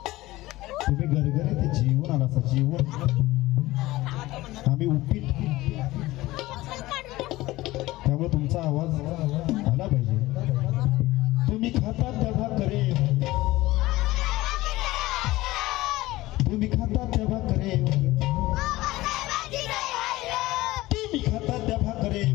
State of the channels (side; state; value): right; quieter; 18.2 dB